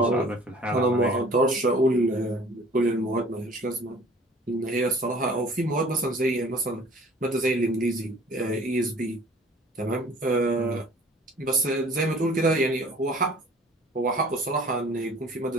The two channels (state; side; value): normal; both; correlation 0.50